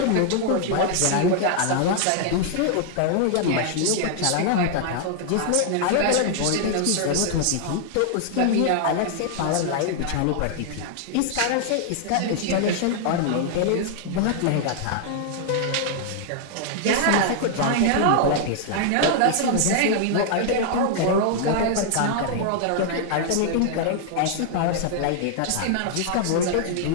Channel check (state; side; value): different; both; correlation 0.00